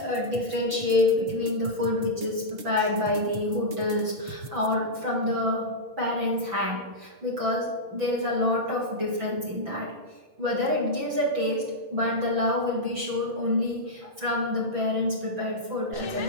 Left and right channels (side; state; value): left; late; 6.0 ms